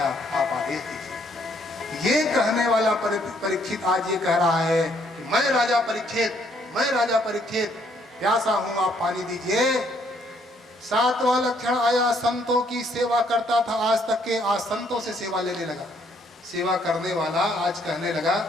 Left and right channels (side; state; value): both; normal; correlation 0.68